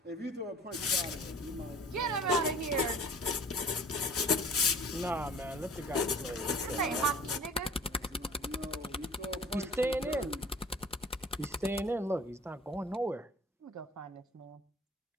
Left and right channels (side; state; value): both; normal; correlation 0.47